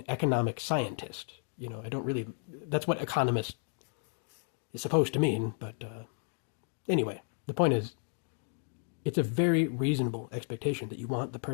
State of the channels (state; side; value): silent; right; 56 dB below the other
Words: economic scientist. I don't really, that's what economist is supposed to mean, but anyway, the point is, it's a very reasonable expectation that you want the